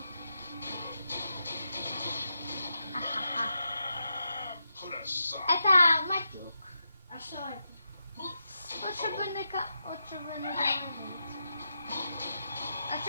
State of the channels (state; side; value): inverted; both; correlation -0.85